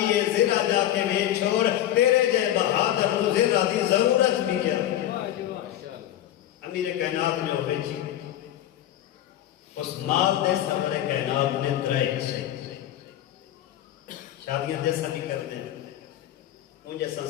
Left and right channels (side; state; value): right; quieter; 12.4 dB